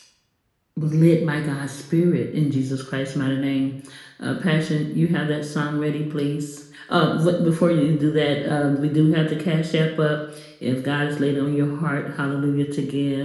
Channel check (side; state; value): both; identical; correlation 1.00